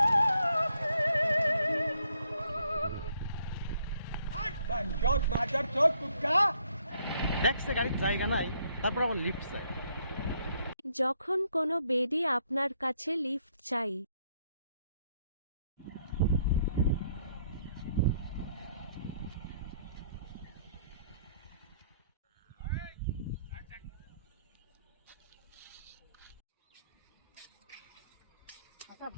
দেখছে গাড়ির জায়গা নাই, তারপর আবার লিফট চাই। যখন কোনো বেডি আপনার কাছে লিফট চাই। আচ্ছা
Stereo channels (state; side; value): inverted; both; correlation -0.70